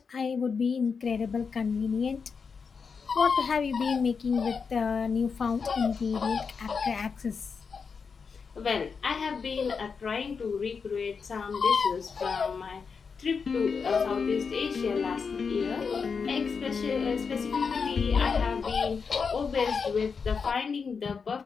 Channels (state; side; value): quieter; right; 5.6 dB